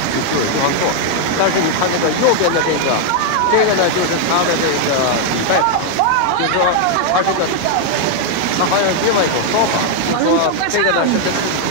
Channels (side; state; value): both; different; correlation 0.00